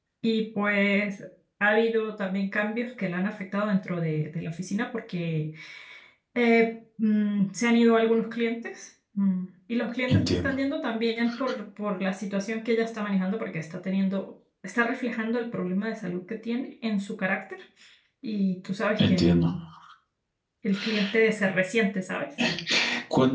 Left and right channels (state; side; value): identical; both; correlation 1.00